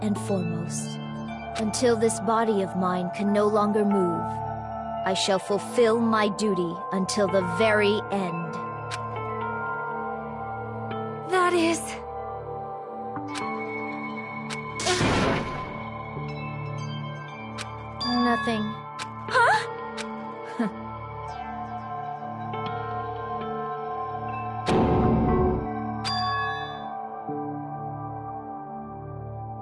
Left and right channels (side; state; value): both; identical; correlation 1.00